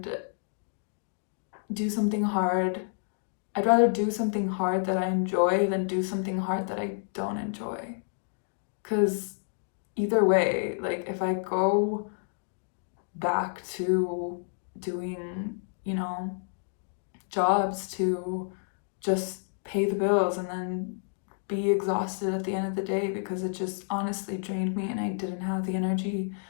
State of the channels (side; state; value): right; silent; digital silence